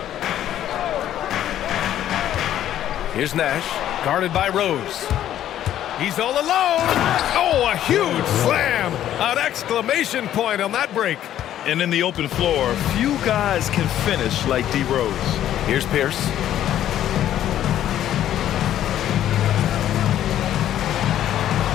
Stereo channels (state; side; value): quieter; right; 11.6 dB